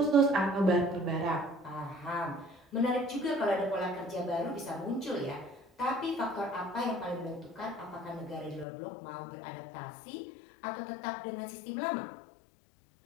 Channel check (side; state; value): right; drops out; at 8.7 s